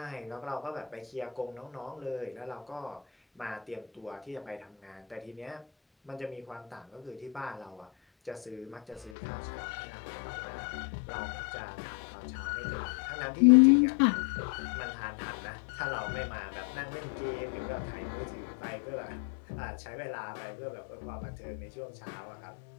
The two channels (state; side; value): drops out; right; at 9.1 s